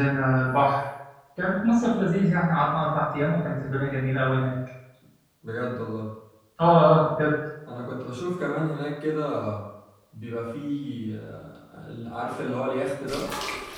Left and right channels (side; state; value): both; identical; correlation 1.00